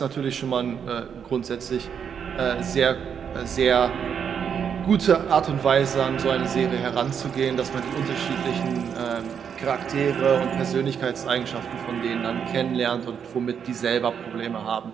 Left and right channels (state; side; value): quieter; left; 7.5 dB